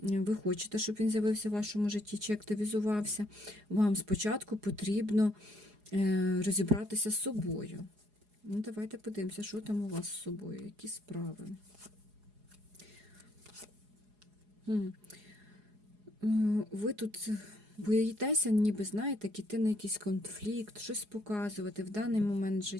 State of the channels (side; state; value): left; late; 4.8 ms